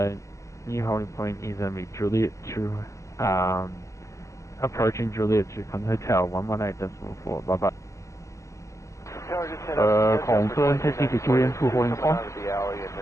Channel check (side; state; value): right; late; 0.15 ms